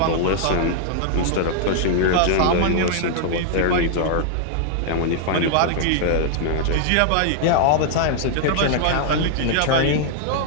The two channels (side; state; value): both; different; correlation -0.01